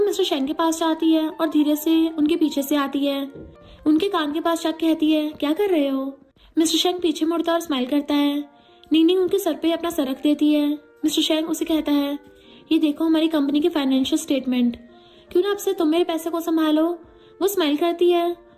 शेंग के पास जाती है और धीरे से उनके पीछे से आती है। उनके कान के पास जाकर कहती है, क्या कर रहे हो। मिस्टर शेंग पीछे मुड़ता और स्माइल करता है। नीनी उनके सर पे अपना सर रख देती है। मिस्टर शेंग उसे कहता है, ये देखो हमारी कंपनी के फाइनेंशियल स्टेटमेंट, क्यों ना अब से तुम मेरे पैसे को संभालो। वो स्माइल करती है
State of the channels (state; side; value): identical; both; correlation 1.00